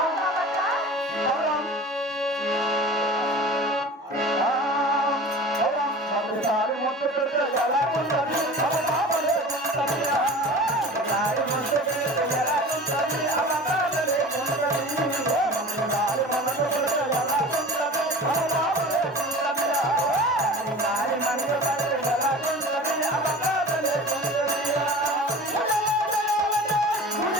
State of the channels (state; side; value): normal; both; correlation 0.37